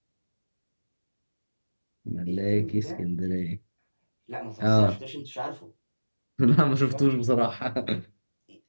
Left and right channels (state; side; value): inverted; both; correlation -1.00